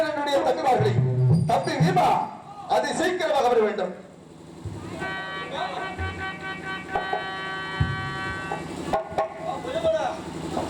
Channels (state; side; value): identical; both; correlation 1.00